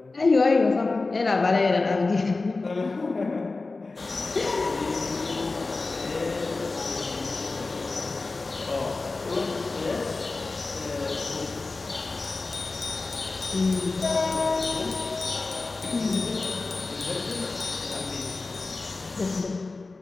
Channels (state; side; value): quieter; right; 3.6 dB